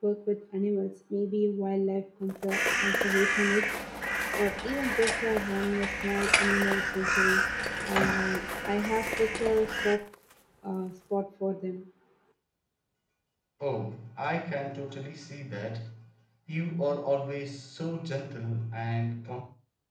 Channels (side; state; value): both; identical; correlation 1.00